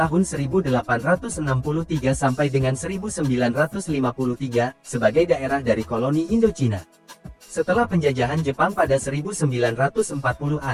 1863 sampai dengan 1953 sebagai daerah dari koloni Indochina. Setelah penjajahan Jepang pada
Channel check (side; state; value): both; identical; correlation 1.00